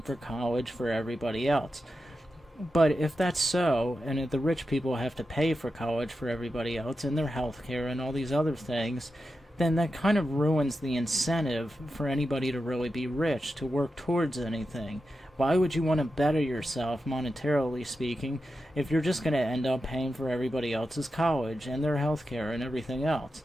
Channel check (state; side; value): normal; both; correlation 0.90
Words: for college for everybody else. But if that's so, and if the rich people have to pay for college for everybody else and their health care and all these other things, then that kind of ruins the incentive for anybody to really be rich, to work towards anything. Why would you want to better yourself, monetarily speaking, if you're just going to end up paying for everybody else's college and their health care and everything else?